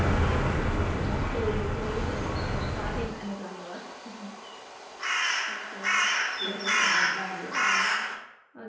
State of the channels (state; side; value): identical; both; correlation 1.00